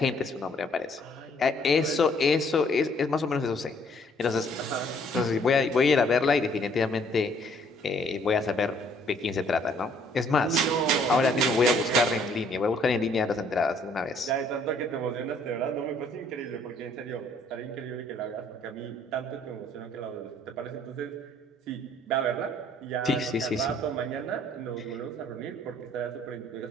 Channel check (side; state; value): both; normal; correlation 0.62